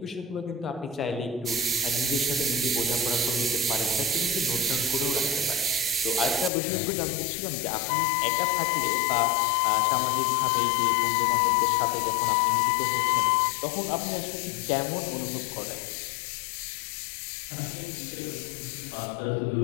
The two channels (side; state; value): right; drops out; at 6.5 s